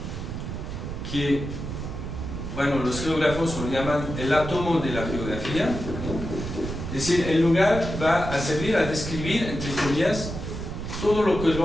que, bueno, los geógrafos lo llaman el átomo de la geografía. Es decir, el lugar va a servir a describir, entre comillas, todo lo que el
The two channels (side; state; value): right; noise; rumble, 6 dB below the sound